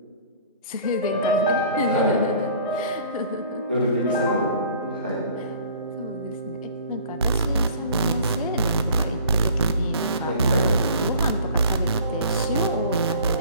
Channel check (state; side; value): inverted; both; correlation -0.50